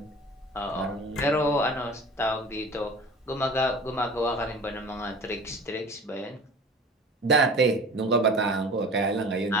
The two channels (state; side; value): normal; both; correlation 0.40